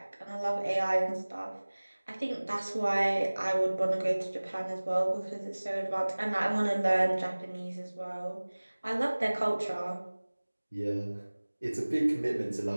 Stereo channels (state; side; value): inverted; both; correlation -1.00